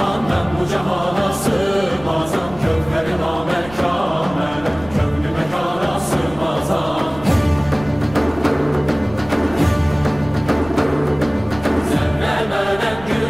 ben bu cihana sığmazam. Gönlüm namekan, melek gönlü mekana sığmazam. Zerre menem,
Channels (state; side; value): noise; right; rumble, 18 dB below the sound